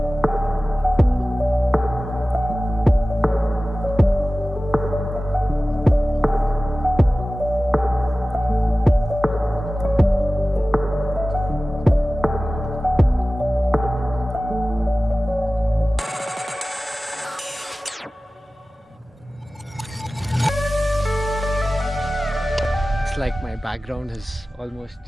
Like my background has almost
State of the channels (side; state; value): both; normal; correlation 0.96